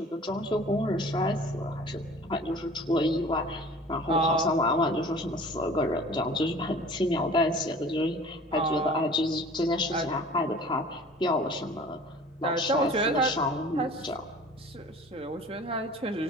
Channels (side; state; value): both; normal; correlation 0.46